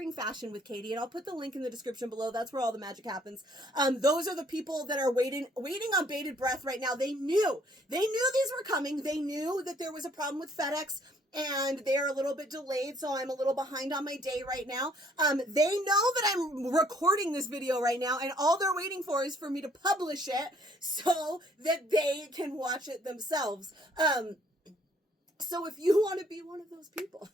Fashion with Katie, and I'll put the link in the description below. That's where all the magic happens. Those are the people that are waiting on bated breath right now. They knew these were coming. They knew that there was a problem with FedEx, and they're a little bit delayed, so I'm a little behind on my day right now. They know that I'm recording this video right now, and all they're waiting for is for me to publish it so that they can watch it themselves. So if you want to be one of those people,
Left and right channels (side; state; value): both; normal; correlation 0.63